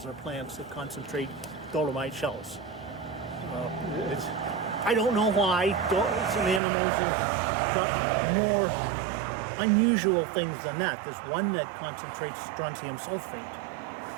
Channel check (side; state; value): left; drops out; at 6.6 s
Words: or plants that concentrate dolomite shells. I don't know why. Some animals have got more unusual things than that. There's one that concentrates strontium sulfate.